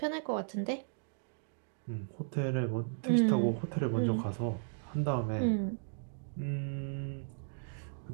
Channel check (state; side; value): silent; left; digital silence